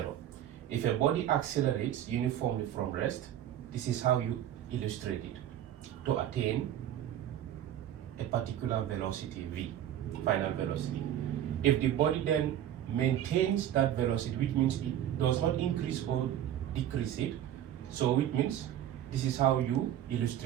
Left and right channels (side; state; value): left; quieter; 11.3 dB